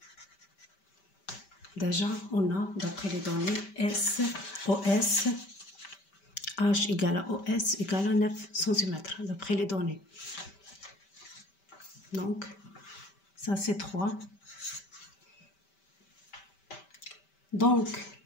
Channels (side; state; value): right; late; 5.1 ms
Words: Déjà, on a, d'après les données, OS H égale à OS égale à 9 cm, d'après les données. Donc, ça c'est 3. Donc,